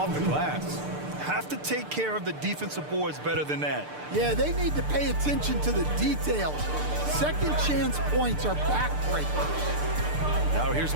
the glass. Have to take care of the defensive boards better than that. Yeah, they need to pay attention to the details. Second chance points are backbreakers. Now here's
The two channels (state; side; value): late; left; 6.7 ms